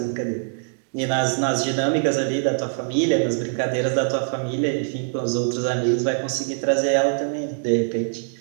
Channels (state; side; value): silent; left; digital silence